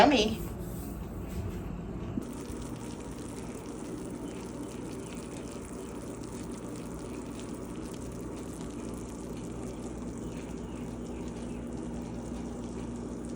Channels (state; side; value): identical; both; correlation 1.00